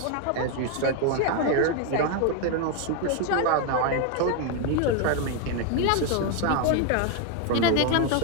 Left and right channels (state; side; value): different; both; correlation 0.01